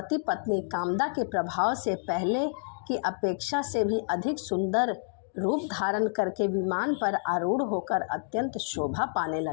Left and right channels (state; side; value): silent; right; digital silence